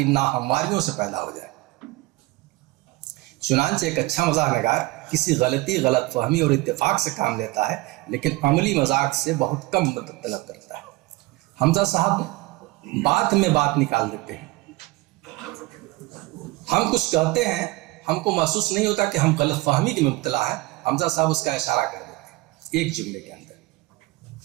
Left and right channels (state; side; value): quieter; left; 20.8 dB